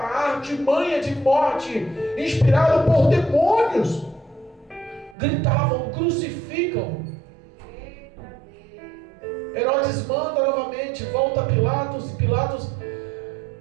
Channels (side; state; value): left; drops out; at 5.2 s